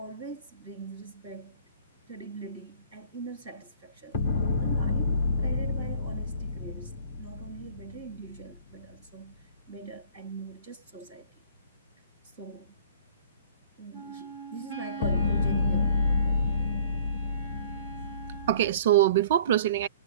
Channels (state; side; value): inverted; both; correlation -0.50